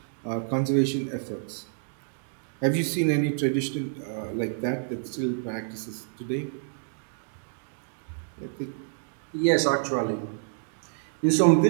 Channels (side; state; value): left; silent; digital silence